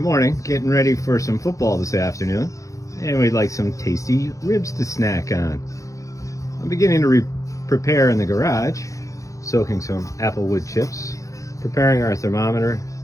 getting ready for some football this afternoon, and we'd like some tasty ribs to snack on. I'm beginning to prepare in the garage, soaking some apple wood chips, preparing our thermometer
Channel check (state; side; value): late; right; 0.16 ms